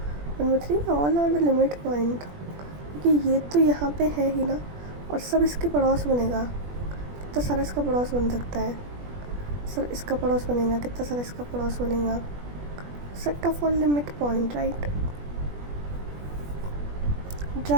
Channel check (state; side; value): late; left; 21 ms